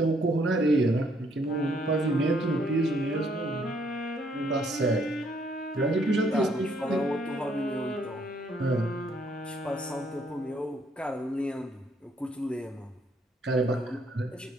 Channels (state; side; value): normal; both; correlation 0.68